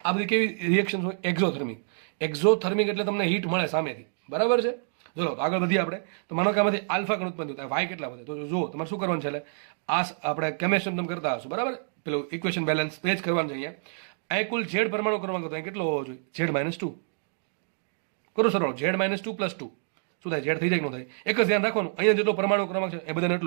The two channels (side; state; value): left; silent; digital silence